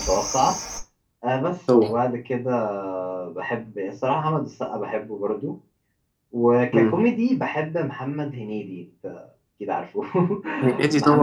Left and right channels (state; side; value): identical; both; correlation 1.00